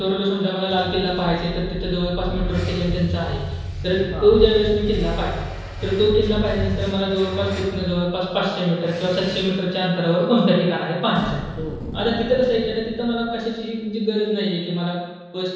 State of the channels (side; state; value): both; identical; correlation 1.00